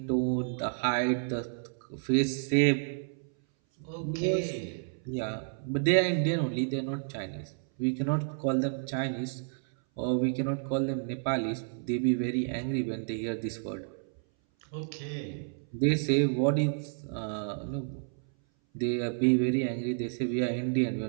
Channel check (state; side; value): silent; left; 57 dB below the other